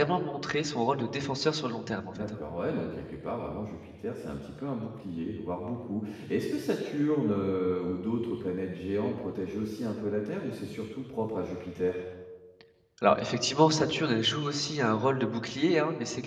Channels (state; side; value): identical; both; correlation 1.00